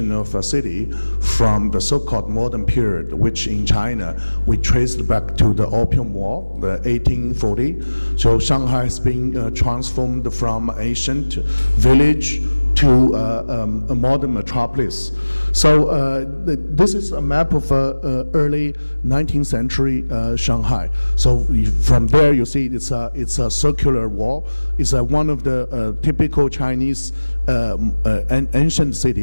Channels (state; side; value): inverted; both; correlation -1.00